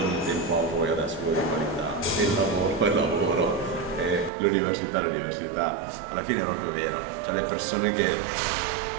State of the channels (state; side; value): drops out; left; at 4.3 s